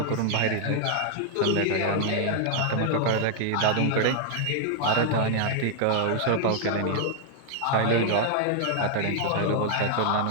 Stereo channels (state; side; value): different; both; correlation 0.00